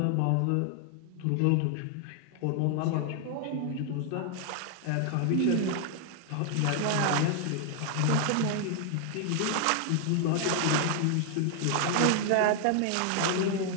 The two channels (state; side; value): different; both; correlation 0.00